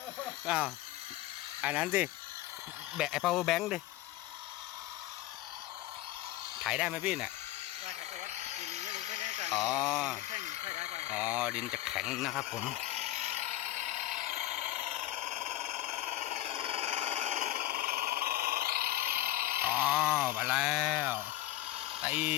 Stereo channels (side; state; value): right; quieter; 15.4 dB